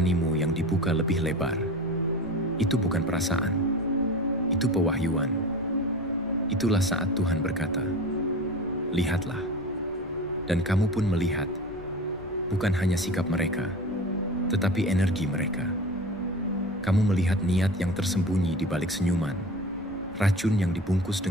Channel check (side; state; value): both; normal; correlation 0.33